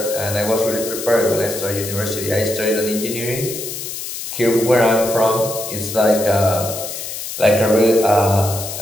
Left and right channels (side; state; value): left; noise; hiss, 7 dB below the sound